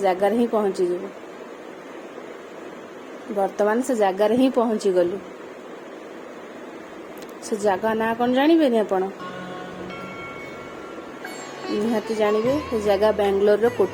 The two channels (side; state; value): both; identical; correlation 1.00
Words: जगह रे ही पहुंची जेबो वर्तमान से जगह रे ही पहुंची गलु से जगह ना कोन जानिबे नि आपण निहाती जानिबे से जगह बेंगलोर रो